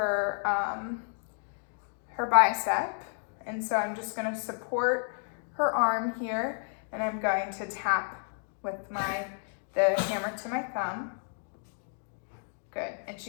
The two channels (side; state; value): right; silent; 57 dB below the other